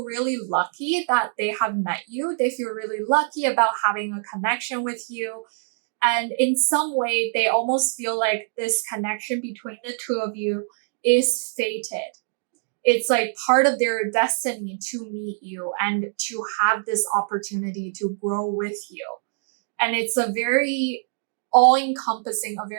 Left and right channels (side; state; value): left; silent; digital silence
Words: really lucky that they have met you. They feel really lucky about having a connection with you. And in some way, they almost feel like this connection between the two of you is fated. It's like part of their destiny to meet you and to have this opportunity to grow with you. And it's a very all encompassing, a